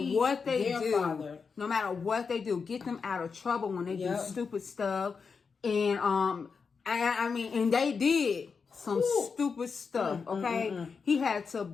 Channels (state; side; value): quieter; right; 5.4 dB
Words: they do, father. No matter what they do, get them out of trouble when they do stupid stuff. And I mean, and they did some stupid stuff, okay? He had to